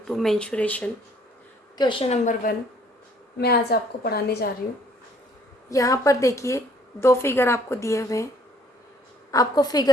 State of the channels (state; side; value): normal; both; correlation 0.61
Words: mensuration. Question number 1 मैं आज आपको पढ़ाने जा रही हूँ। यहाँ पर देखिए दो फिगर आपको दिए हुए हैं। आपको